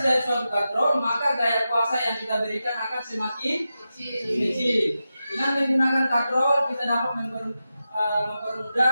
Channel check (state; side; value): inverted; both; correlation -0.91